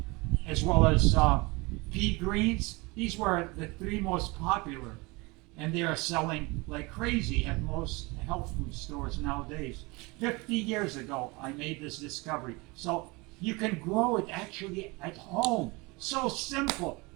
pea greens. These were the three most popular, and they are selling like crazy at most health food stores nowadays. 50 years ago, I made this discovery. So you can grow it actually at home. So simple.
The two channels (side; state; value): left; quieter; 25.5 dB